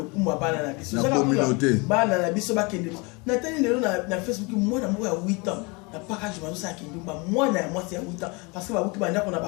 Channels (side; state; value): right; quieter; 28.4 dB